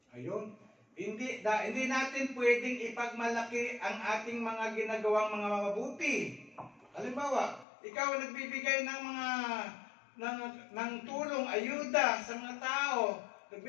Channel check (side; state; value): right; drops out; at 7.7 s